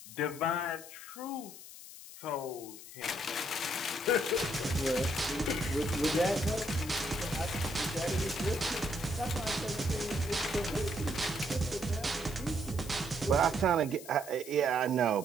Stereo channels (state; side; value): noise; left; hiss, 15 dB below the sound